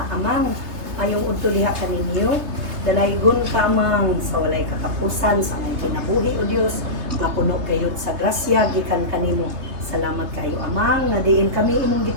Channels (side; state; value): left; late; 3.3 ms